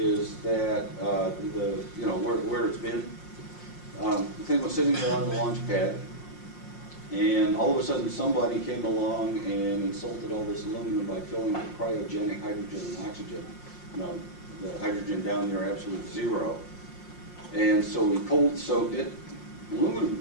that where it's been. The thing was sitting there on the launch pad, and all of a sudden somebody came along and insulted all this aluminum by filling it with cryogenic hydrogen and oxygen. The hydrogen down near absolute zero. And so we cold soaked it.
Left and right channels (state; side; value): late; right; 5.6 ms